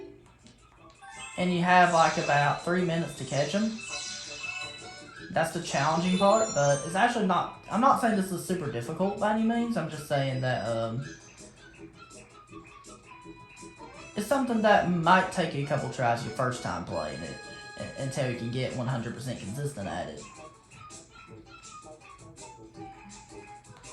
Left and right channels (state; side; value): identical; both; correlation 1.00